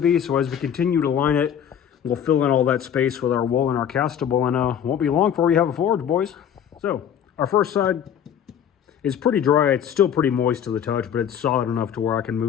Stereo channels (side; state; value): right; quieter; 8.9 dB